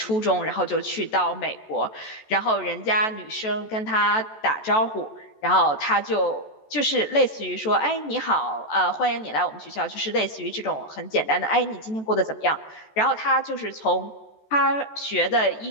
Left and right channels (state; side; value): late; right; 14 ms